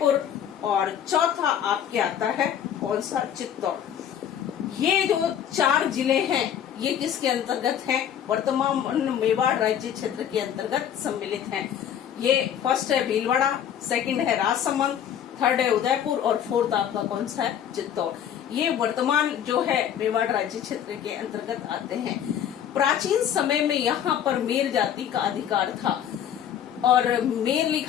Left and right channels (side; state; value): right; quieter; 9.5 dB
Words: और चौथा आपके आता है कौन सा? चित्तौड़। ये जो 4 जिले हैं, ये किसके अंतर्गत हैं? वर्तमान मेवाड़ राज्य क्षेत्र के अंतर्गत सम्मिलित हैं। ये फर्स्ट है भीलवाड़ा, सेकंड है राजसमंद, थर्ड है उदयपुर और फोर्थ आपका कौन सा है? चित्तौड़। ये वर्तमान जो है मेवाड़ राज्य क्षेत्र के अंतर्गत आते हैं। प्राचीन समय में यहाँ पर मेर जाति का अधिकार था, और मेर